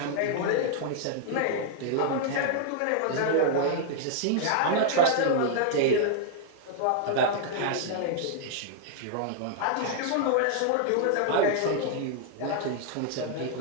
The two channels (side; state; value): both; different; correlation -0.01